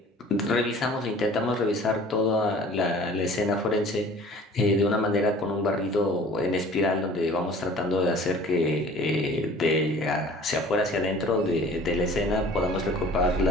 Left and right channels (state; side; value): normal; both; correlation 0.47